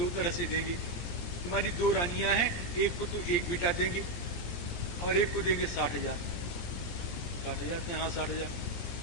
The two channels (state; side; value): late; right; 17 ms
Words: तरह से देंगे, तुम्हारी दो रानियां हैं, एक को तो एक बेटा देंगे और एक को देंगे 60,000। 60,000? हाँ 60,000।